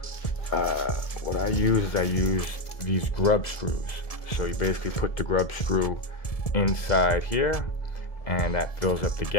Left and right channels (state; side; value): late; right; 1.7 ms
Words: What I use these grub screws. So you basically put the grub screw inside here, and that fills up the